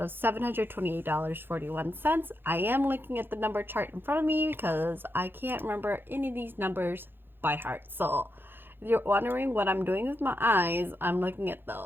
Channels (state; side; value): late; left; 0.10 ms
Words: of $728.41. I am looking at the number chart in front of me because I can't remember any of these numbers by heart. So if you're wondering what I'm doing with my eyes, I'm looking at